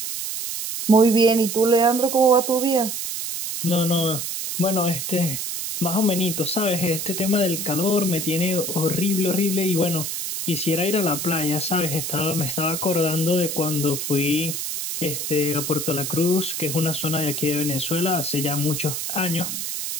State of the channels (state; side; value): noise; right; hiss, 4 dB below the sound